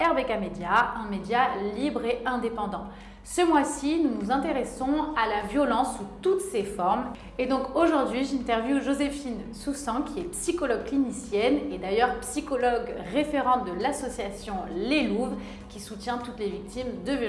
Media, un média libre et indépendant. Ce mois-ci, nous nous intéressons à la violence sous toutes ses formes. Et donc aujourd'hui, j'interviewe Joséphine Soussan, qui est psychologue clinicienne et d'ailleurs psychologue référente de l'association Les Louves, qui soutient toutes les victimes de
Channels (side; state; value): both; identical; correlation 1.00